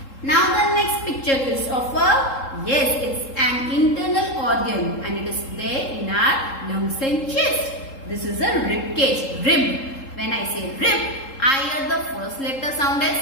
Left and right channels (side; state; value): right; late; 3.7 ms